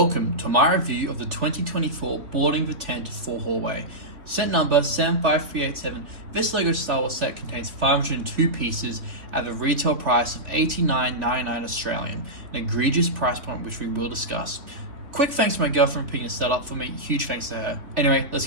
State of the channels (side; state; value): left; late; 3.5 ms